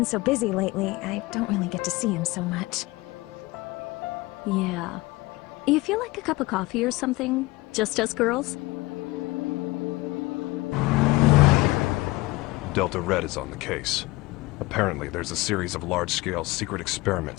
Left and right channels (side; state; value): right; quieter; 21.0 dB